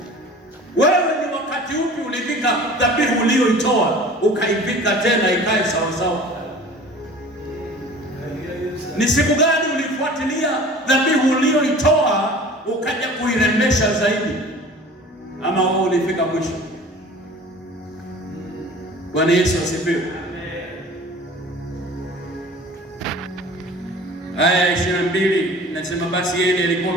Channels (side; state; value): both; normal; correlation 0.43